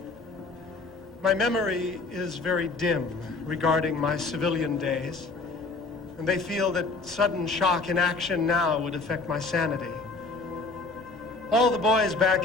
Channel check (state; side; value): quieter; right; 3.8 dB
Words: My memory is very dim regarding my civilian days, and they feel that sudden shock in action now would affect my sanity. All the boys back